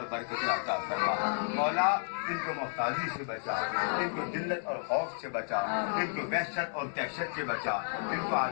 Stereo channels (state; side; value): silent; right; digital silence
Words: برکتیں عطا فرما. مولا ان کو محتاجی سے بچا, ان کو ذلت اور خوف سے بچا, ان کو وحشت اور دہشت سے بچا, ان کو